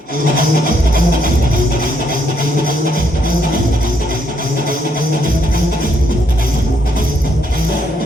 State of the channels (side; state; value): both; normal; correlation 0.73